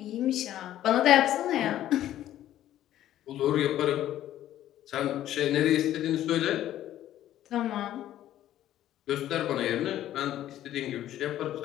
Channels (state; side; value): quieter; right; 12.6 dB